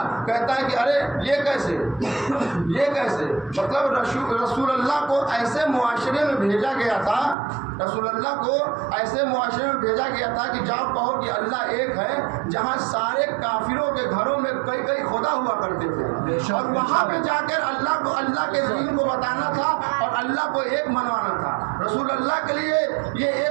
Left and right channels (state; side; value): drops out; left; at 7.4 s